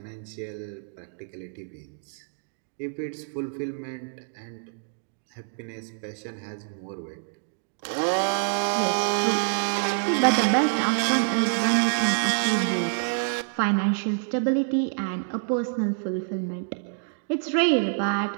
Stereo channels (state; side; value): silent; left; digital silence